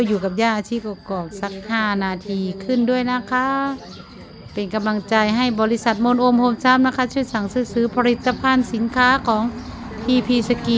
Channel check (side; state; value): both; identical; correlation 1.00